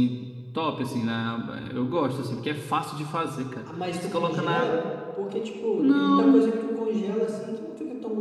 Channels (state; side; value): identical; both; correlation 1.00